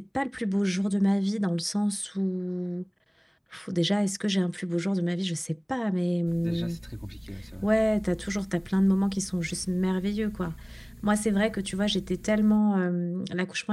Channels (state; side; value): identical; both; correlation 1.00